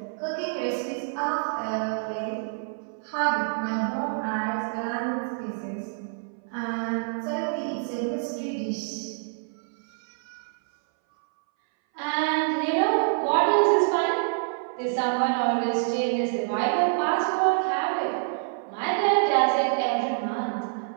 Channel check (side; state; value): left; silent; 60 dB below the other